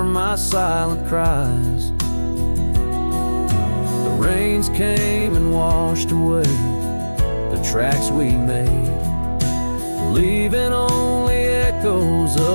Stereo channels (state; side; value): inverted; both; correlation -1.00